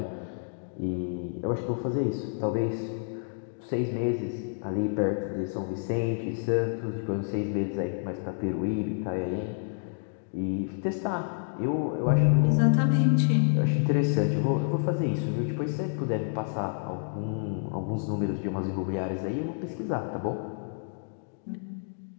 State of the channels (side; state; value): right; silent; digital silence